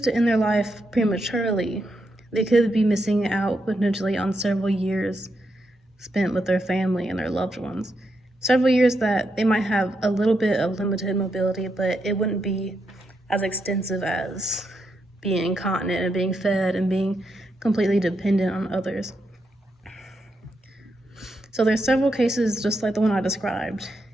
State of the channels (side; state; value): both; normal; correlation 0.82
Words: to end their life prematurely, they could be missing out potentially on several years spent with their family and their loved ones. Several years that they might have a little bit of limited mobility, but it wouldn't be as extensive as being incontinent and being fed and being completely dependent on others. So there's several cases just like the one I described